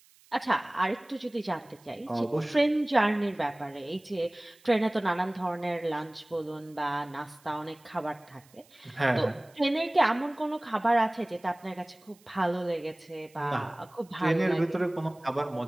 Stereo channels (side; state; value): right; noise; hiss, 29 dB below the sound